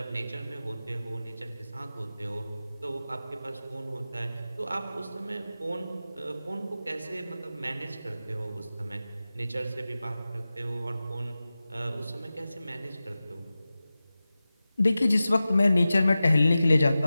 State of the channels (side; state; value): both; inverted; correlation -0.95